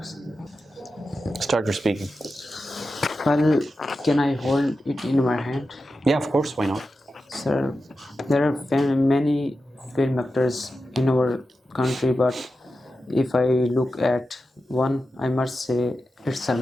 Start your speaking. Well, can I hold it in my hand? Yeah, of course, why not? Sir, there are many film actors in our country, but if I look at one, I must say it's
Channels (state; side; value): normal; both; correlation 0.91